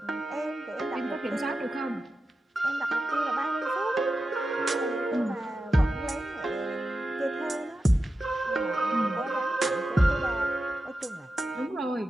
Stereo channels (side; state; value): both; normal; correlation 0.91